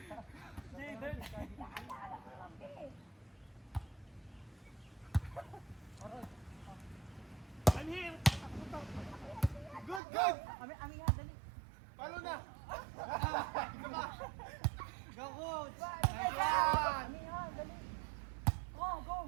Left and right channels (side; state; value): left; drops out; at 10.0 s